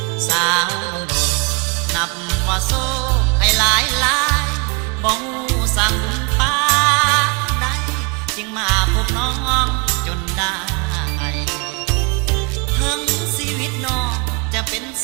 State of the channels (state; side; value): quieter; left; 30.8 dB